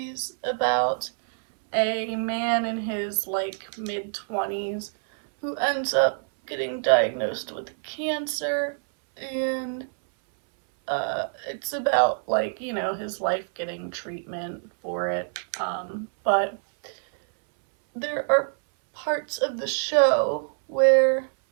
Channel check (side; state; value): left; silent; 61 dB below the other